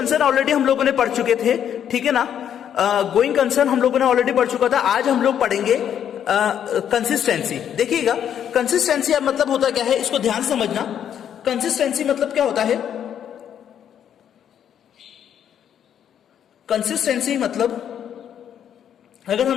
ऑलरेडी हम लोगों ने पढ़ चुके थे. ठीक है ना. गोइंग कंसर्न हम लोगों ने ऑलरेडी पढ़ चुका था. आज हम लोग पढ़ेंगे कंसिस्टेंसी. देखिएगा, कंसिस्टेंसी अब मतलब होता क्या है, इसको ध्यान से समझना. कंसिस्टेंसी मतलब क्या होता है, कंसिस्टेंसी मतलब अगर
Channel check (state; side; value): quieter; right; 9.3 dB